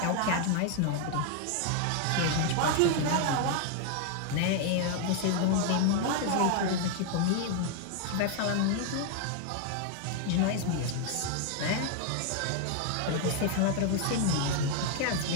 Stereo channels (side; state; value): both; different; correlation 0.00